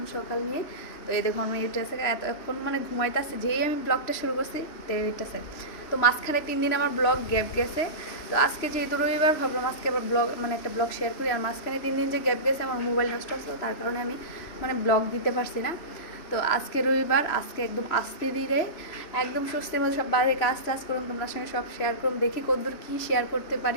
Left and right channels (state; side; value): late; right; 3.0 ms